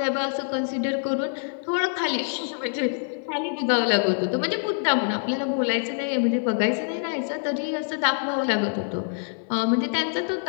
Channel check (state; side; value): silent; right; 61 dB below the other